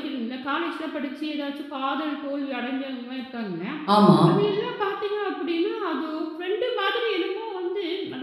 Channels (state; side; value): identical; both; correlation 1.00